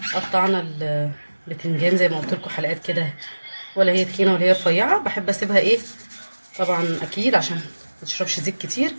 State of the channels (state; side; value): inverted; both; correlation -1.00